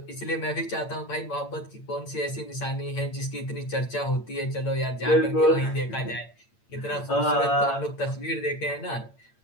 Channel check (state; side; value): late; right; 8.8 ms